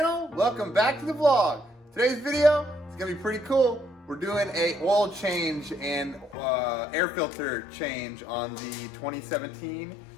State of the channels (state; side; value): drops out; right; at 6.4 s